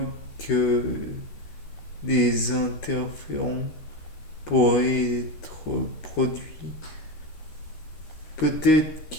que des interférons pourraient être produits. Peut-être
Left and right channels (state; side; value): late; right; 13 ms